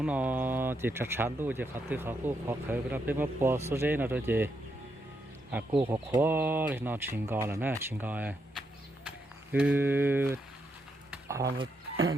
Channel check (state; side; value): normal; both; correlation 0.80